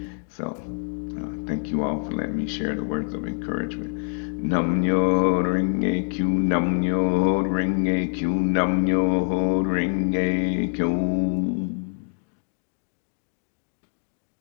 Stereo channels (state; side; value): silent; right; 62 dB below the other